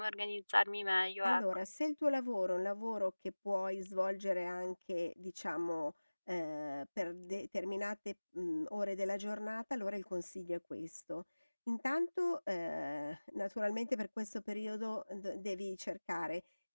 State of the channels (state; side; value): inverted; both; correlation -1.00